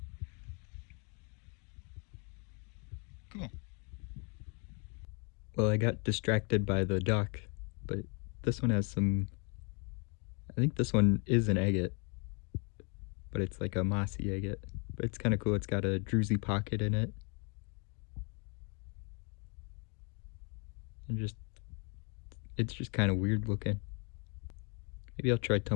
Cool. Well, I got distracted by the duck, but this one has some, I think this one is an agate, but it's like a mossy agate. But it's kind of cool. It's got a druzy pocket in it. And it's just kind of weird looking. Maybe I'll try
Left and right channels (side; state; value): right; quieter; 35.9 dB